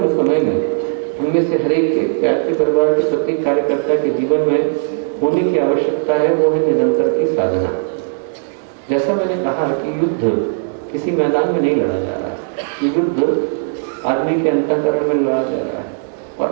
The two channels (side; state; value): left; silent; 61 dB below the other